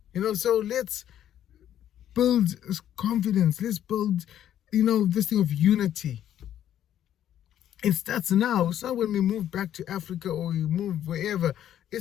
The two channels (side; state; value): right; quieter; 10.9 dB